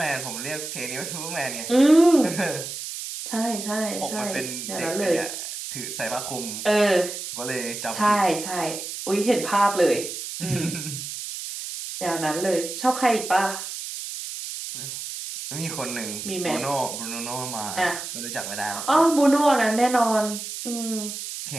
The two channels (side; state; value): right; noise; hiss, 7 dB below the sound